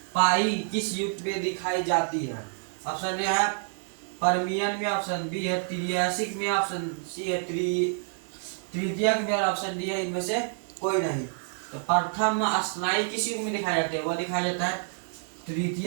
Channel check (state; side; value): silent; left; 59 dB below the other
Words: पाई किस युग में दिखाई जाती है? ऑप्शन ए है पर्मियन में, ऑप्शन बी है त्रियासिक में, ऑप्शन सी है तृतीयक में, और ऑप्शन डी है इनमें से कोई नहीं। तो प्रथम स्तनायु किस युग में दिखाई जाती है? वह दिखाया जाता है